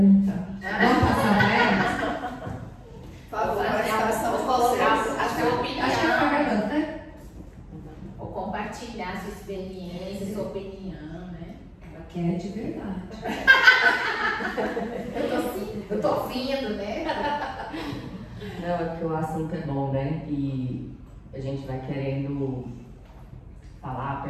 Vamos passar para elas? Por favor, a sua opinião. Acho que está gravando, né? Ou compartilhar sua experiência, sua opinião, né? Ela quer de verdade. Eu tô ouvindo, né? Não, é porque o assunto é bom, né? E a gente vai querendo falar,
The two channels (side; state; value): both; identical; correlation 1.00